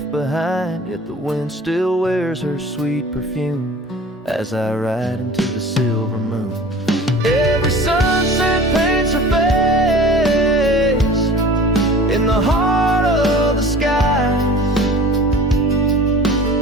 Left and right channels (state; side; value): normal; both; correlation 0.42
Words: behind, yet the wind still wears her sweet perfume as I ride into the silver moon. Every sunset paints her face in the heart of the skies.